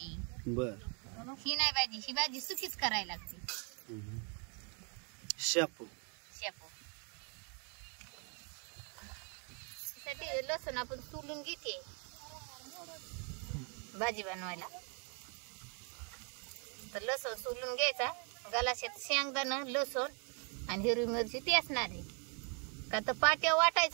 बर, ही नाही भाजी, ही भाजी सुकीच करायला लागते। शापू शेपू साठी लसूण आपण सोलून घेते भाजी बनवायला। तर लसूण सोलून घ्यायचा, गलाशात शेंगदाणा, लसूण आणि हिरवी मिरची ती असणार आहे का। तर पाट्या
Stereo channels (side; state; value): left; quieter; 38.0 dB